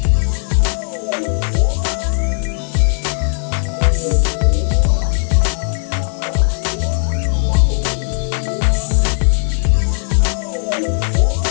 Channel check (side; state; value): right; silent; digital silence